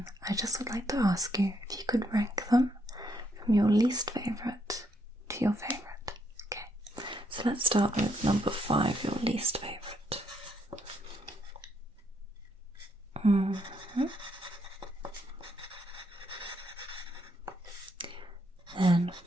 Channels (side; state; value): both; normal; correlation 0.74